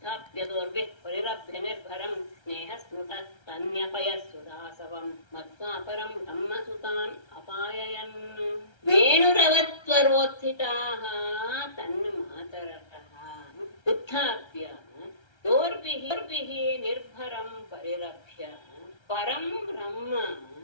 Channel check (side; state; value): right; late; 1.3 ms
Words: ಪರಿರಭ್ಯ ನಿರ್ಭರಂ ಸ್ನೇಹ ಸ್ಮೃತ ತನ್ಯಪಯ ಸುದಾಸವಂ ಮತ್ವಾಪರಂ ಬ್ರಹ್ಮಸುತಾನ್ ಅಪಾಯಯನ್. ವೇಣುರವತ್ವರೋತ್ಥಿತಾಃ ತನ್ಮಾತರಃ ಉತ್ಥಾಪ್ಯ ದೋರ್ಭಿಃ ನಿರ್ಭರಂ ಪರಿರಭ್ಯ ಪರಂ ಬ್ರಹ್ಮ